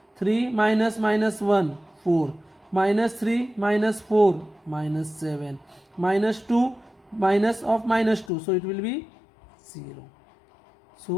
3 minus minus 1, 4, minus 3 minus 4, minus 7, minus 2 minus of minus 2, so it will be 0.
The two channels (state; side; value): drops out; right; at 8.3 s